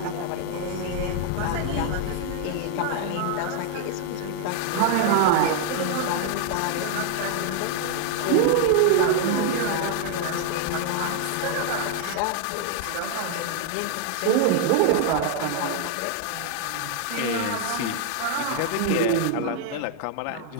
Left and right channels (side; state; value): both; different; correlation 0.00